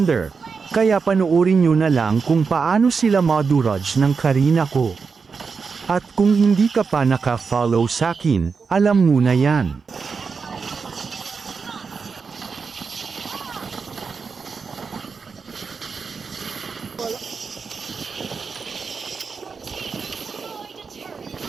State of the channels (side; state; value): left; quieter; 5.2 dB